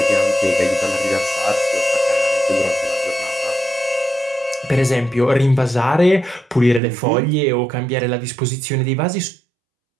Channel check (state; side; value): drops out; left; at 6.8 s